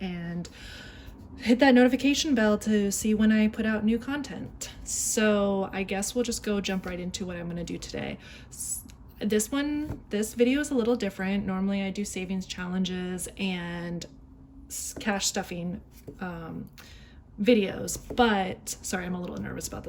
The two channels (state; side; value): identical; both; correlation 1.00